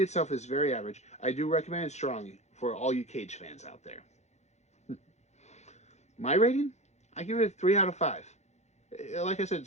itself is very average, I do recommend it strongly for all you Cage fans out there. My rating? I give it a 3 out of 5. Like I said,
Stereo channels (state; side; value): late; right; 0.33 ms